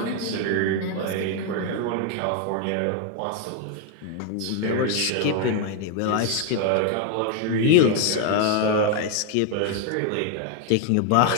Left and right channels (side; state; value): both; different; correlation 0.01